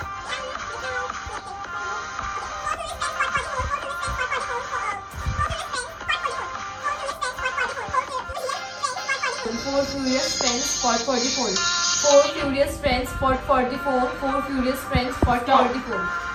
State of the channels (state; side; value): identical; both; correlation 1.00